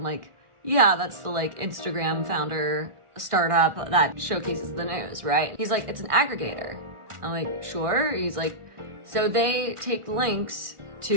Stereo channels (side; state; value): left; late; 1.6 ms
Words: like, yeah, that's the like Instagram founder startup that showcases the news, right? He's like, it's an aggregator. I'm like, sure. He's like, so they take links